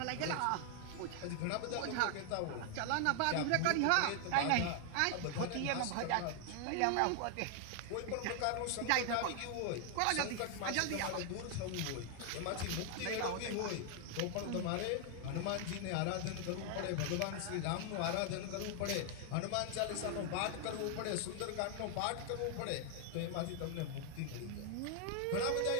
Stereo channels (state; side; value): different; both; correlation 0.00